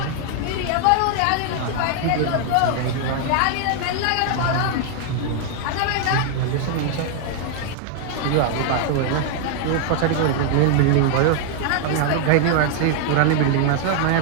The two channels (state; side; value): different; both; correlation 0.00